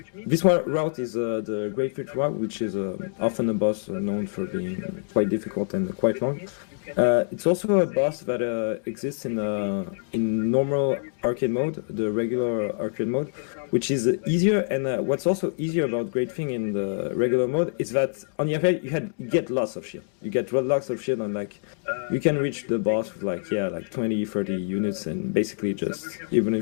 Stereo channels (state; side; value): silent; right; digital silence